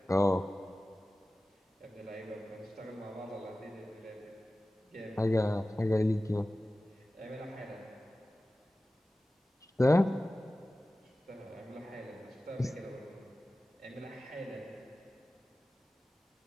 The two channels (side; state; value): both; normal; correlation 0.96